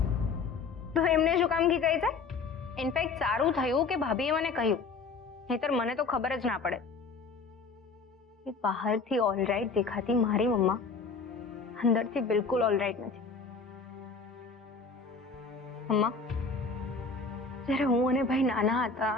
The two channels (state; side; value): quieter; right; 4.5 dB